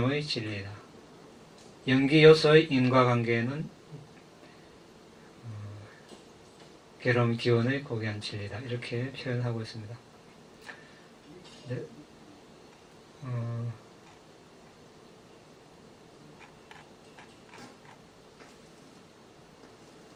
진리이다. 연기요소의 인과관계는 괴로움 기원의 고귀한 진리다. 이렇게 표현하고 있습니다. 네.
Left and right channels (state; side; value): identical; both; correlation 1.00